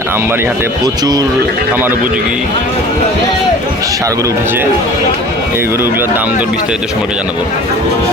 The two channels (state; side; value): normal; both; correlation 0.43